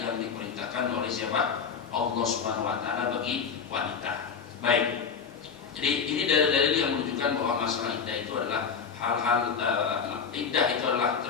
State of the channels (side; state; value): right; quieter; 6.2 dB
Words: diperintahkan oleh siapa? Allah Subhanahu wa taala bagi wanita. Baik. Jadi ini dalil-dalil yang menunjukkan bahwa masalah iddah itu adalah hal-hal iddah itu adalah